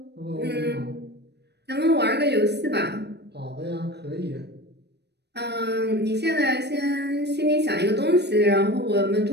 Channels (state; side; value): late; left; 0.49 ms